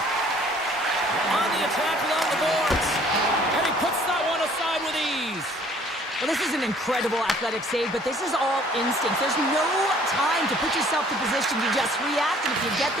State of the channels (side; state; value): both; normal; correlation 0.56